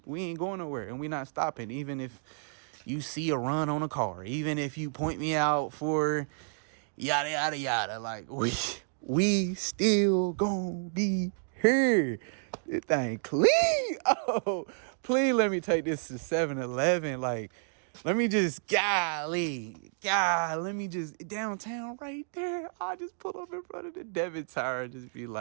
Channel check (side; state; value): left; silent; digital silence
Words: ain't going nowhere, and we not stopping. Even if you see a run on a car, even if you point me out for yada yada yada, like we still gonna be here. This thing clean. Oh, please let me take this to 7-Eleven. Like, let me just let me just downtown right there. I just pull up in front of the debit tower and just be